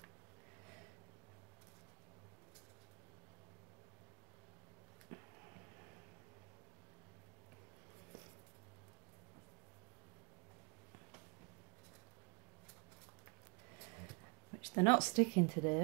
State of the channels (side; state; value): left; quieter; 32.8 dB